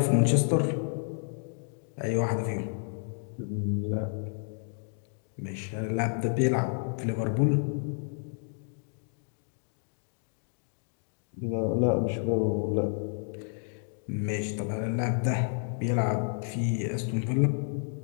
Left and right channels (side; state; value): right; silent; 57 dB below the other